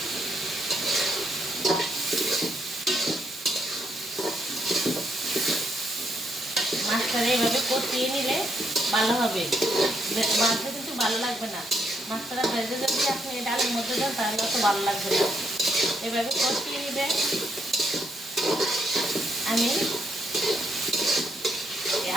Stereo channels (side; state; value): both; normal; correlation 0.75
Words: মাছটা এইভাবে কষিয়ে নিলে ভালো হবে, মাছটা কিন্তু ভালো লাগবে না। মাছটা ভেজে যদি আপনি ডালের মধ্যে দেন তাহলে অত ভালো লাগবে না। এভাবে কষিয়ে নিবে। আমি